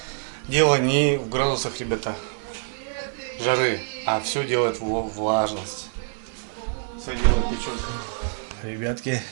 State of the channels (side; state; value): left; silent; 59 dB below the other